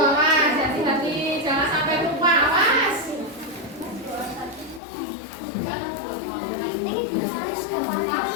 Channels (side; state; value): right; drops out; at 4.8 s